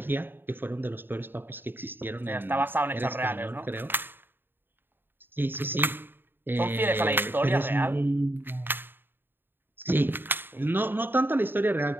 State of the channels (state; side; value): late; left; 0.097 ms